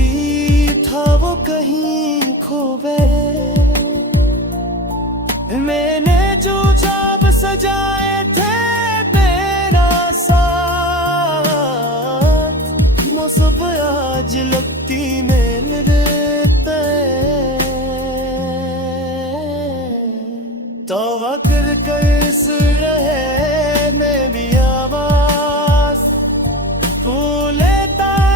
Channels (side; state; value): both; normal; correlation 0.29